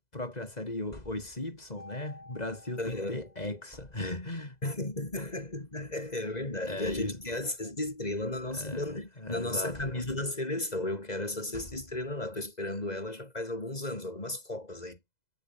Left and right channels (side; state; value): right; late; 2.0 ms